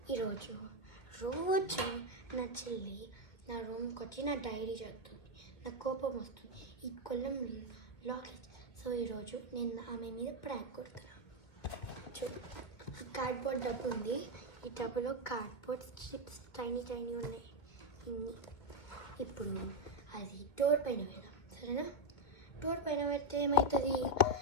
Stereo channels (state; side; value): late; right; 2.2 ms